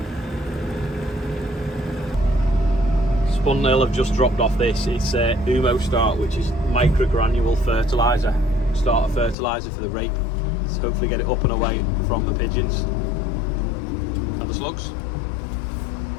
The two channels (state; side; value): drops out; right; at 9.3 s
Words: Spun Nail have just dropped off this. It's Umo Start, which is microgranule fertiliser. Starter fertiliser for the rape. To hopefully get it up and away from the pigeons and the slugs.